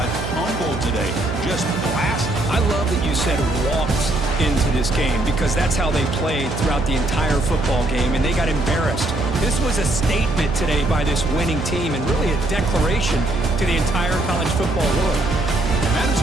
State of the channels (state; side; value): noise; right; hum, 6 dB below the sound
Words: humbled today. Just blasted. I love that you said walked into this game because that's how they played throughout the entire football game, and they got embarrassed. This was a statement today by this winning team and really a declaration to the entire college football world. And that is